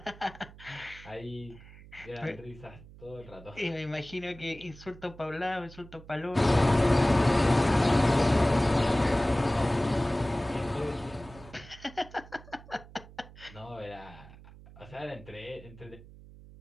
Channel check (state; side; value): noise; right; hum, 19 dB below the sound